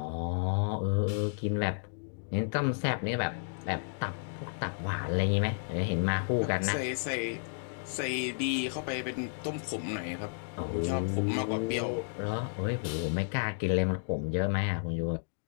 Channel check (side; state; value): right; silent; digital silence